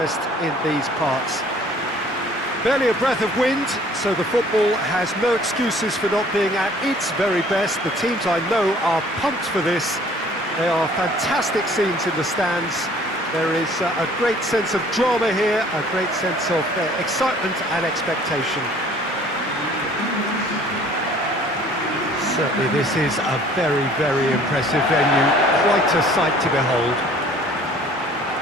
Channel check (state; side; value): normal; both; correlation 0.54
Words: in these parts. Barely a breath of wind, so the football has no excuses for not being at its very best. The teams I know are pumped for this. They are fantastic scenes in the stands. There is a great sense of drama here, a great sense of excitement and expectation. Certainly this is a very, very impressive venue, quite a sight to behold.